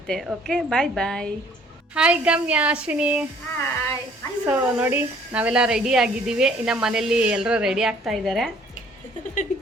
ಓಕೆ, ಬಾಯ್ ಬಾಯ್. ಹಾಯ್ ಗಮ್ಯ, ಅಶ್ವಿನಿ. ಸೊ ನೋಡಿ, ನಾವೆಲ್ಲ ರೆಡಿ ಆಗಿದ್ದೀವಿ. ಇನ್ನು ಮನೇಲಿ ಎಲ್ಲರೂ ರೆಡಿ ಆಗ್ತಾ ಇದ್ದಾರೆ.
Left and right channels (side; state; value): both; normal; correlation 0.58